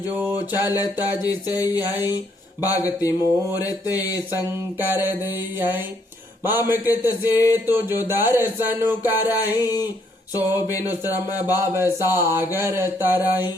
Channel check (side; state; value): both; normal; correlation 0.71